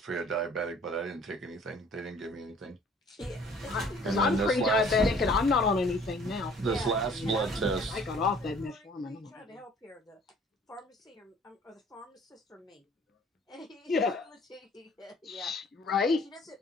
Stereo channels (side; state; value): both; normal; correlation 0.54